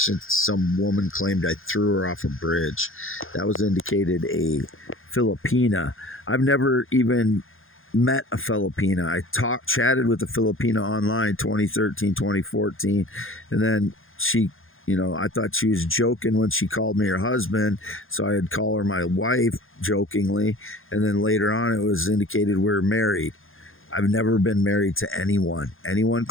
some woman claimed I threw her off a bridge. That was indicated a Filipina. I've never even met a Filipina. I chatted with a Filipina online 2013, 2014, and then she, I thought she was joking when she called me her husband, so I'd call her my wife jokingly, and then later on it was indicated we're married. I've never been married to anyone. Anyone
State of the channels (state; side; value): late; right; 0.60 ms